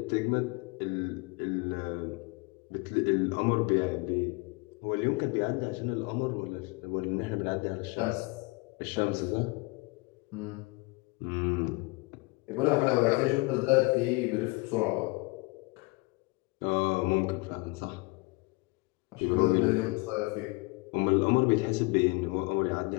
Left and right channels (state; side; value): quieter; right; 26.3 dB